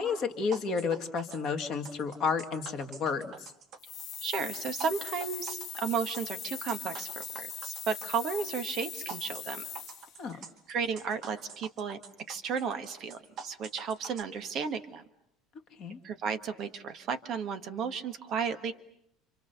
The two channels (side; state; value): both; normal; correlation 0.51